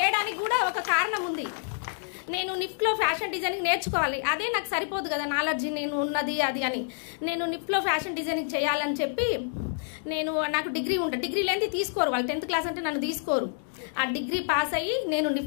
కూడా ఒక కారణం ఉంది. నేను నిఫ్ట్లో ఫ్యాషన్ డిజైనింగ్ నేర్చుకోవాలి, అదే నాకు సరిపోదు కదా నాలెడ్జ్ నేను ఉన్నది అది అని. నేను నిఫ్ట్లో ఫ్యాషన్ డిజైనింగ్ చేయాలని చెప్పి నాకు డిగ్రీ లేని తీసుకోరు వాళ్ళు. 10th క్లాస్ అంటే నన్ను తీసుకోరు. ఆ డిగ్రీ పాస్ అయ్యి నేను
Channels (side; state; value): right; silent; digital silence